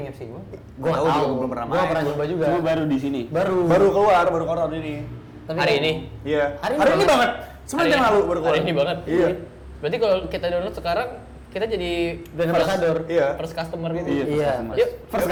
apps sih, Bang. Gua Tahu nggak juga, tahu. belum pernah Gua nggak main. pernah nyoba juga. Cuma baru di sini. Baru. Baru keluar ini. Tapi Hari ini? Iya. Hari Hari ini ini banget. Sebenarnya yang lalu baru keluar. Hari ini banget. Iya. Berarti kalau kita download sekarang kita jadi Brand ambassador. Iya. first customer gitu. Iya, Iya. Yuk, First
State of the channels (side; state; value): both; identical; correlation 1.00